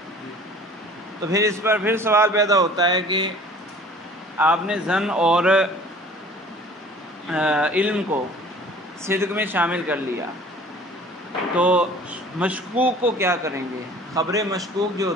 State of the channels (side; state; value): both; normal; correlation 0.48